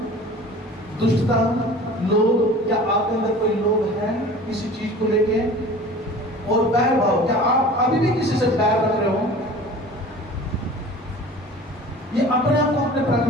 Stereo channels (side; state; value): both; normal; correlation 0.42